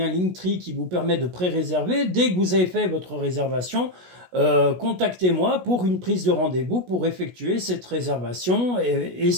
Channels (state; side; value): late; left; 16 ms